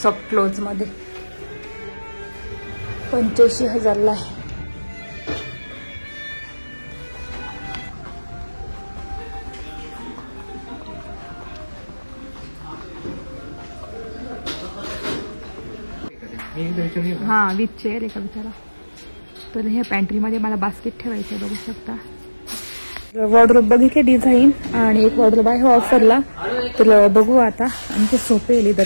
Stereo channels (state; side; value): inverted; both; correlation -1.00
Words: सॉफ्ट क्लोज मध्ये 85,000ला आहे. हा विथ चेअर आहे का विचारा. तर ह्या पॅन्ट्रीमध्ये मला बास्केट ठेवायचं आहे. बघू शकता. वॉर्डरोब बघितले डिझाईन. आणि एक वॉर्डरोब आहे ऑफरला तर बघू आता आमचे सोपे